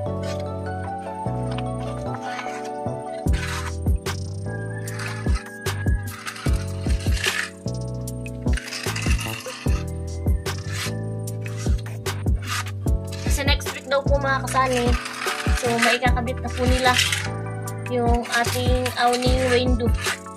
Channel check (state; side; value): identical; both; correlation 1.00